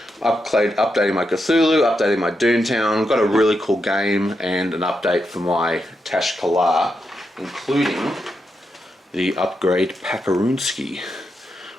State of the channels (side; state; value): both; normal; correlation 0.84